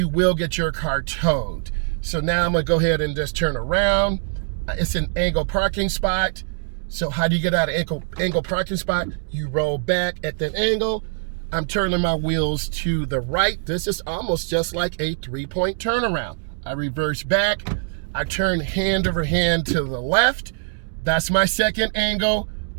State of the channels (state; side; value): silent; left; digital silence